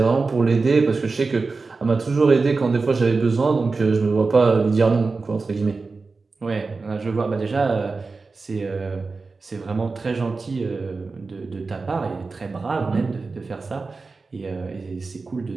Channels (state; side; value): quieter; left; 4.1 dB